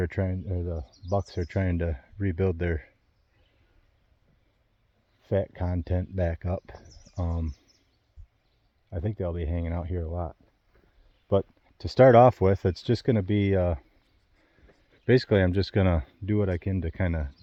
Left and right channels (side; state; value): both; identical; correlation 1.00